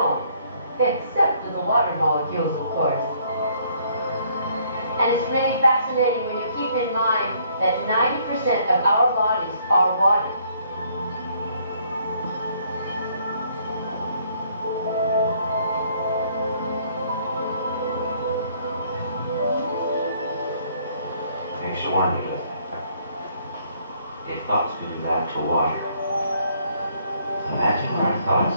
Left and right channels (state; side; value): inverted; both; correlation -0.65